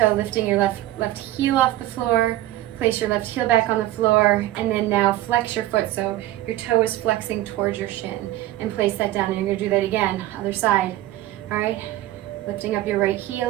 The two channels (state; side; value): quieter; left; 15.0 dB